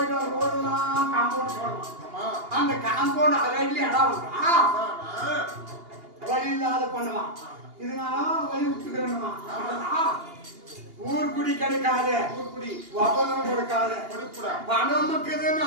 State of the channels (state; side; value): late; left; 2.8 ms